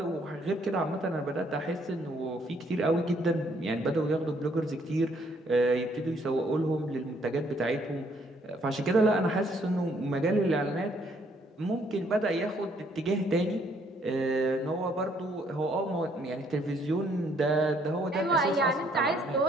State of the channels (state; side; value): normal; both; correlation 0.67